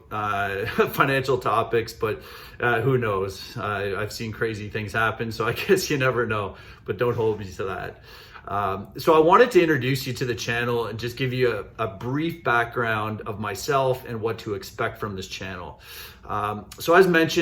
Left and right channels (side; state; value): both; identical; correlation 1.00